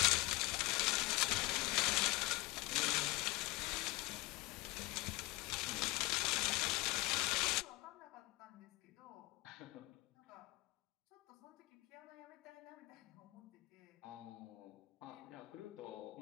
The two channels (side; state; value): right; quieter; 21.6 dB